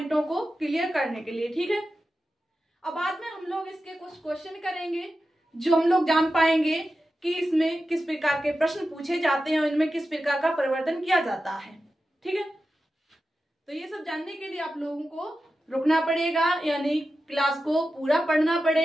को क्लियर करने के लिए। ठीक है, अब बाद में हम लोग इसके कुछ क्वेश्चन करेंगे जो हम लोग जान पाएंगे कि इसमें किस प्रकार के प्रश्न पूछे जाते हैं और इनमें किस प्रकार का परिवर्तन किया जाता है। ठीक है, तो ये सब जानने के लिए आप लोगों को रुकना पड़ेगा, यानी क्लास को पूरा पढ़ना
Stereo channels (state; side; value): normal; both; correlation 0.92